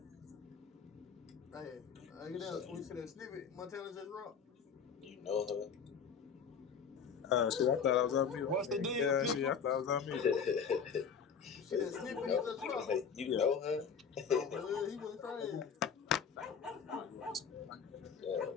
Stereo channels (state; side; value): quieter; right; 6.5 dB